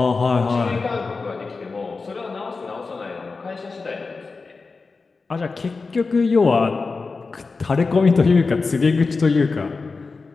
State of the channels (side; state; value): right; quieter; 4.2 dB